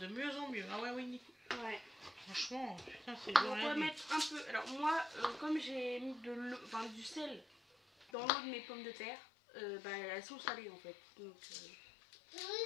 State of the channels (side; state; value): right; drops out; at 8.1 s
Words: mieux en mieux. Ah ouais, oui. Ouais. Franchement, putain, c'est Donc on va mettre un peu. Alors moi, comme j'ai mis de l'eau, enfin du sel dans l'eau de mes pommes de terre, bah, elles sont salées en fait. Donc